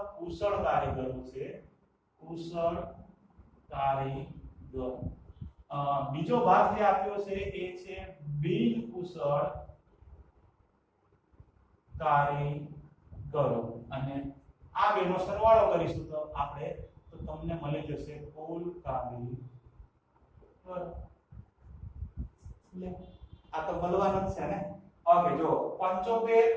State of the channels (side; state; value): both; identical; correlation 1.00